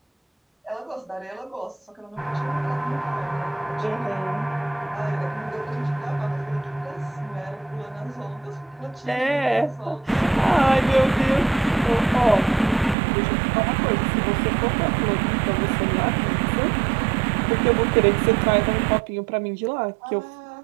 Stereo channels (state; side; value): drops out; left; at 13.0 s